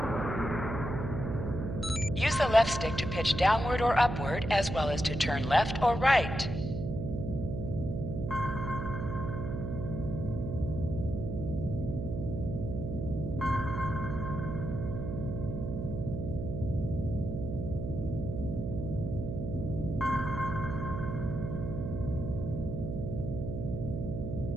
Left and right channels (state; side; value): noise; right; hum, 4 dB below the sound